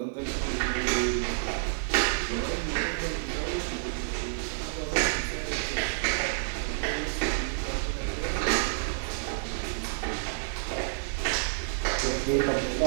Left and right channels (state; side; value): silent; left; digital silence